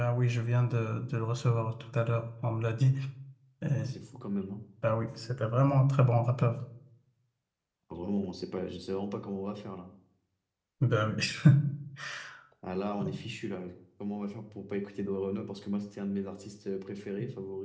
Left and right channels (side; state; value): both; identical; correlation 1.00